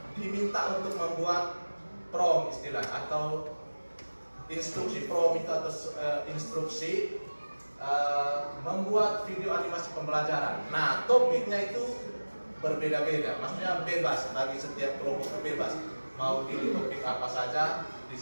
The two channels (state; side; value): inverted; both; correlation -1.00